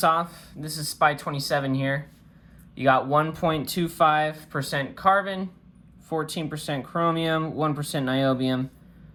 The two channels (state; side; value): identical; both; correlation 1.00